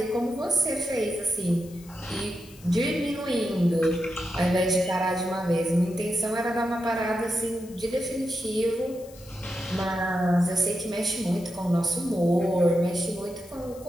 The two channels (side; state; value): left; noise; hiss, 23 dB below the sound